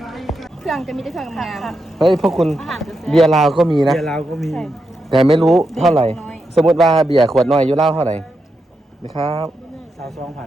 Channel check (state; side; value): normal; both; correlation 0.85